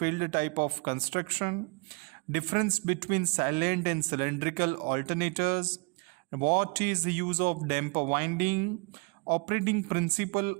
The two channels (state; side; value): quieter; left; 30.5 dB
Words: type of construction, difference between silent and cylindrical alternators, what is the use of damper winding, operating principle